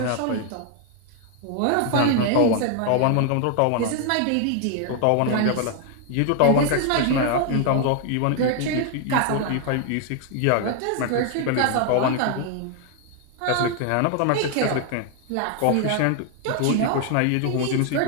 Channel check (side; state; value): both; different; correlation 0.00